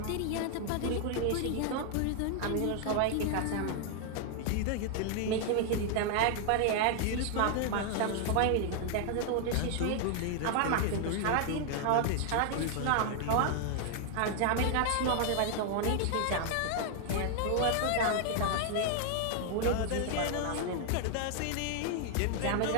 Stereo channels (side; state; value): both; different; correlation 0.00